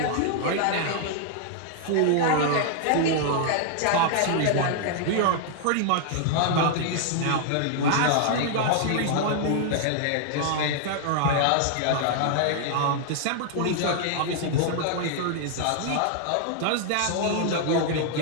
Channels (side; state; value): both; different; correlation 0.00